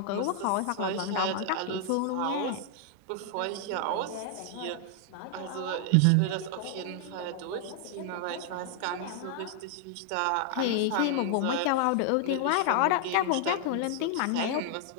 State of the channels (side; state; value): both; different; correlation 0.00